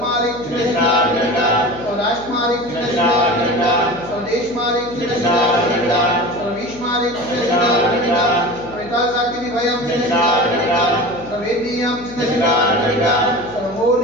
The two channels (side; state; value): left; noise; hum, 18 dB below the sound